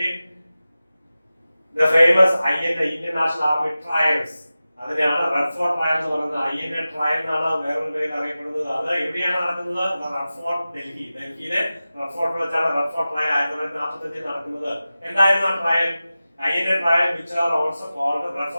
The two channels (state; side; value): inverted; both; correlation -0.95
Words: the famous INA Indian National Army trials അതിനെയാണ് റെഡ് ഫോർട്ട് ട്രയൽ എന്ന് പറയുന്നത്. INA ട്രയൽ എന്നാണ് വേറൊരു പേരിൽ അറിയപ്പെടുന്നത്. അത് എവിടെയാണ് നടക്കുന്നത്? റെഡ് ഫോർട്ട് ഡൽഹിയിലെ റെഡ് ഫോർട്ടിൽ വെച്ചാണ് റെഡ് ഫോർട്ട് ട്രയൽ 1945 നടക്കുന്നത്. എന്തായിരുന്നു ആ trial? INA trial, which are also called the Red